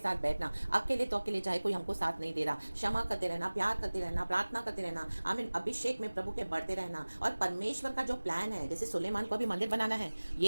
बैठना। अकेले तो अकेले, चाहे कोई हमको साथ नहीं दे रहा, क्षमा करते रहना, प्यार करते रहना, प्रार्थना करते रहना, आमीन, अभिषेक में प्रभु के बढ़ते रहना। और परमेश्वर का जो प्लान है, जैसे सुलेमान को अभी मंदिर बनाना है,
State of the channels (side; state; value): both; inverted; correlation -1.00